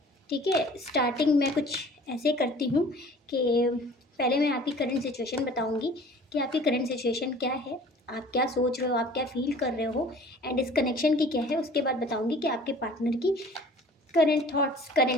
ठीक है, स्टार्टिंग में कुछ ऐसे करती हूँ कि पहले मैं आपकी करंट सिचुएशन बताऊंगी कि आपकी करंट सिचुएशन क्या है, आप क्या सोच रहे हो, आप क्या फील कर रहे हो, एंड इस कनेक्शन की क्या है। उसके बाद बताऊंगी कि आपके पार्टनर की current thoughts,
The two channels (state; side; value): normal; both; correlation 0.48